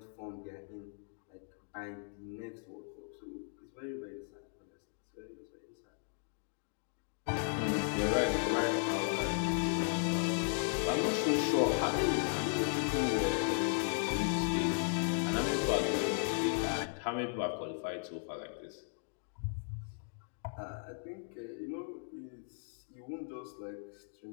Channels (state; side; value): silent; right; digital silence